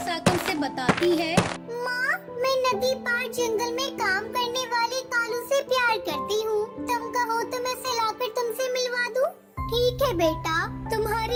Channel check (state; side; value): identical; both; correlation 1.00